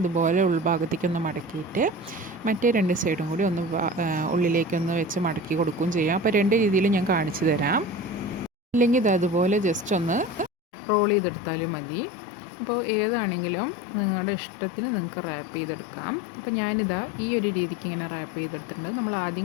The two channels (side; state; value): right; drops out; at 10.5 s